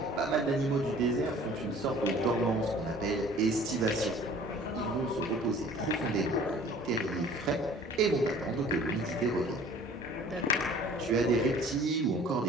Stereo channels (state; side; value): normal; both; correlation 0.50